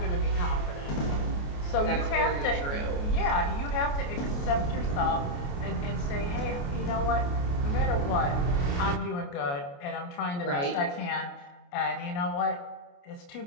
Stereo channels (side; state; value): right; late; 28 ms